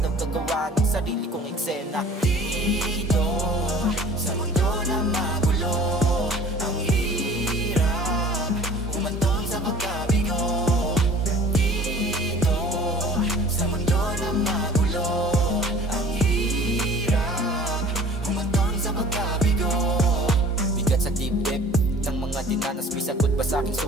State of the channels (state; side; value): normal; both; correlation 0.48